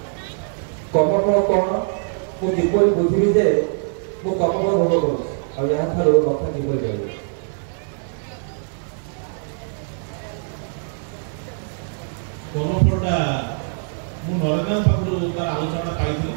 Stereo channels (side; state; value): left; silent; digital silence